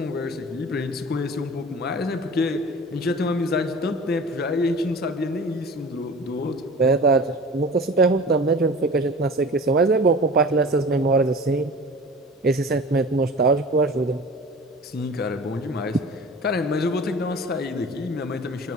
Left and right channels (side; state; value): both; normal; correlation 0.40